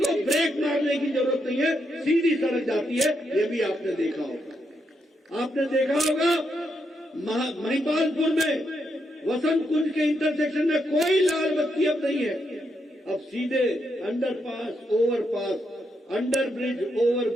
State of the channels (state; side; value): normal; both; correlation 0.80